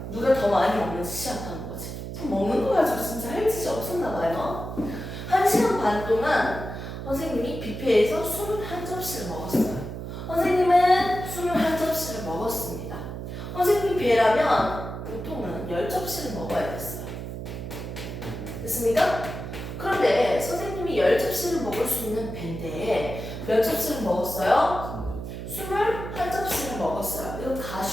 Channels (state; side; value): noise; right; hum, 8 dB below the sound